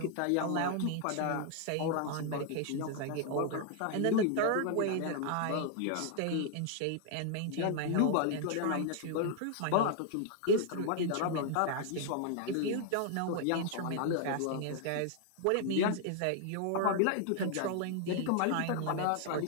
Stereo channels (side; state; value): both; different; correlation 0.00